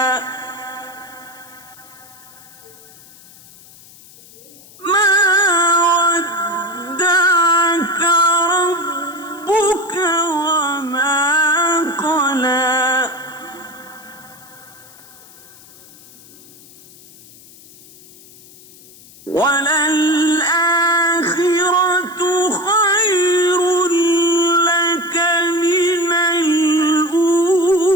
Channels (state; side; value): noise; left; hiss, 23 dB below the sound